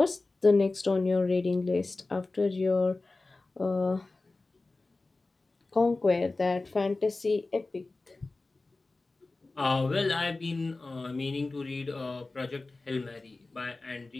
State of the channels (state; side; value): quieter; right; 3.3 dB